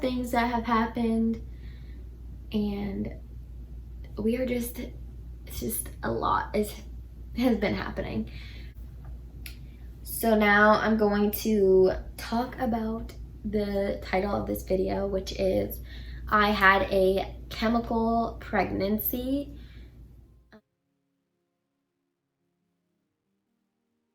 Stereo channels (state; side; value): identical; both; correlation 1.00